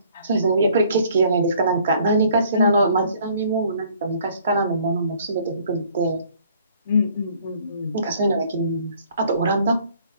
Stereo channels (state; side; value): inverted; both; correlation -0.59